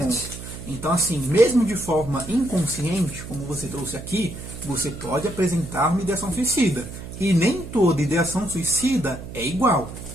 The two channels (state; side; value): noise; right; hum, 11 dB below the sound